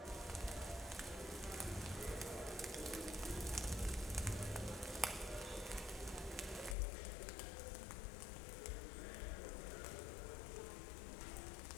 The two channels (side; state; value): right; drops out; at 6.8 s